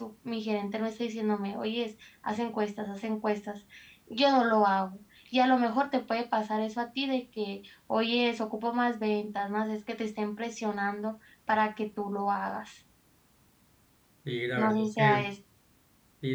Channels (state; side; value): identical; both; correlation 1.00